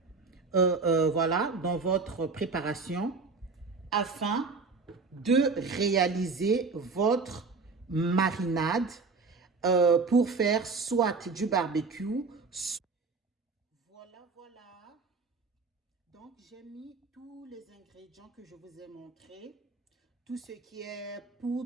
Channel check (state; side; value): quieter; left; 4.4 dB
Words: voilà, dans votre préparation afin de réaliser votre marinade pour faire soit du barbecue. Voilà. Donc, j'ai mis tous les ingrédients que je vous ai montrés. Tout ce qui est